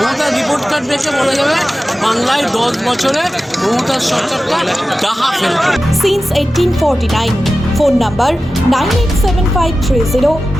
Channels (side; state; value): both; normal; correlation 0.94